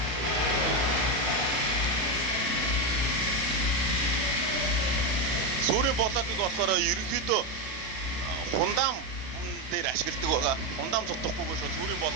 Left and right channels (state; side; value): late; left; 32 ms